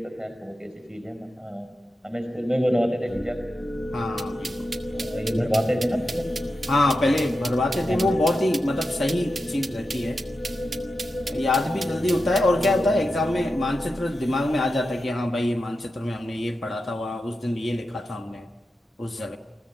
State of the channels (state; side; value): normal; both; correlation 0.90